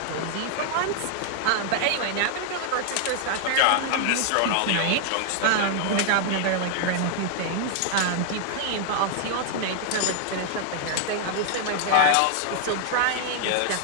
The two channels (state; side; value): different; both; correlation 0.00